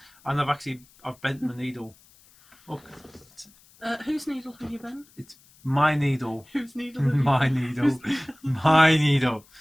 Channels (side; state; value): left; noise; hiss, 28 dB below the sound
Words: and I've bent my needle. Look. Whose needle have you bent? It's my needle. Whose needle have you My needle. My needle.